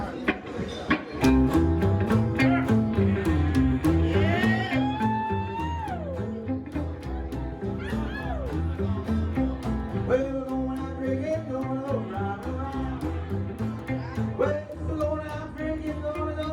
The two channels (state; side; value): identical; both; correlation 1.00